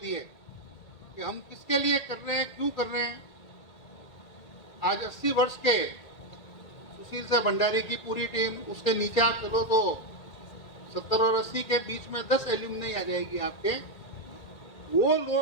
है कि हम किसके लिए कर रहे हैं, क्यों कर रहे हैं। आज 80 वर्ष के सुशील से भंडारी की पूरी टीम, उसके नीचे आप चलो तो 70 और 80 के बीच में 10 एल्यूमनी आ जाएगी आपके। वो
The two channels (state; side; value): late; right; 1.8 ms